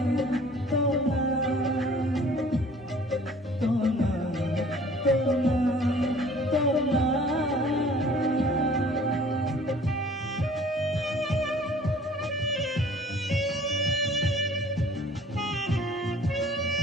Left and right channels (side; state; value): both; normal; correlation 0.52